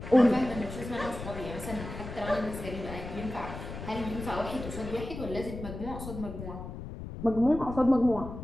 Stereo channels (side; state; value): left; noise; rumble, 9 dB below the sound